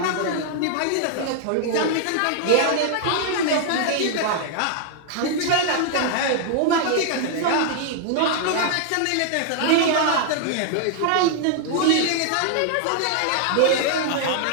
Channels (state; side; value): different; both; correlation 0.00